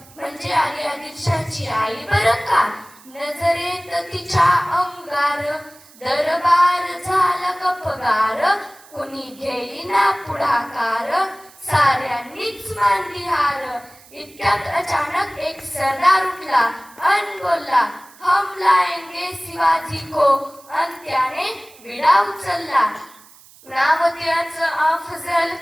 म्हणजे आली आदिलशाची आई बरं का. नजरेत तिच्या अंगार दरबार झाला गपगार. कुणी घेईना पुढाकार साऱ्यांनीच मानली हार. इतक्यात अचानक एक सरदार उठला अन बोलला हम लाएंगे शिवाजी को. अन त्याने विडा उचलला. नाव त्याचं अफजल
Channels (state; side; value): noise; right; hiss, 24 dB below the sound